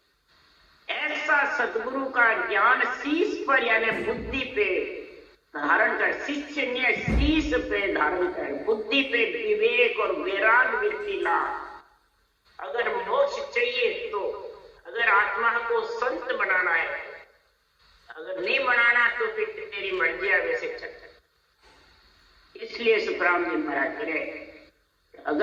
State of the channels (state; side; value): identical; both; correlation 1.00